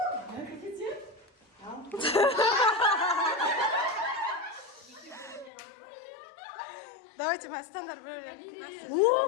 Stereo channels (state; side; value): drops out; right; at 5.5 s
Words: Давайте мы стандарт бөлем.